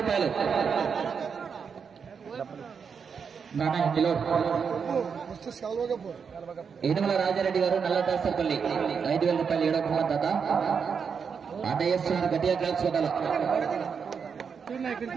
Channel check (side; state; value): left; quieter; 6.3 dB